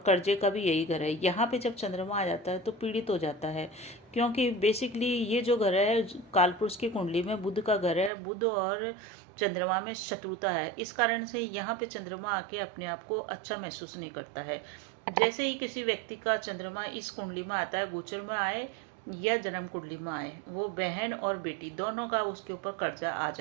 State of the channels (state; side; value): drops out; left; at 8.1 s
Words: कर्जे का भी यही घर है। यहाँ पे जब चंद्रमा आ जाता है तो पीड़ित हो जाता है, क्योंकि बेसिकली ये जो घर है कालपुरुष की कुंडली में बुध का घर है। बुध और चंद्रमा में शत्रुता है, इस कारण से यहाँ पे चंद्रमा आके अपने आप को अच्छा महसूस नहीं करता है। जैसे ही किसी व्यक्ति का चंद्रमा इस कुंडली में आता है, गोचर में आए या जन्म कुंडली में आए, वो बहन और बेटी दोनों का उसके ऊपर कर्जा आ